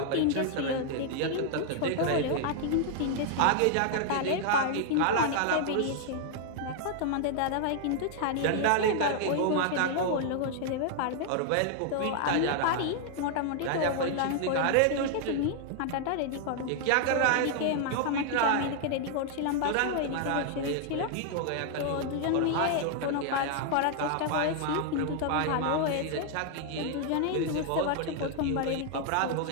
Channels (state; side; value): different; both; correlation 0.00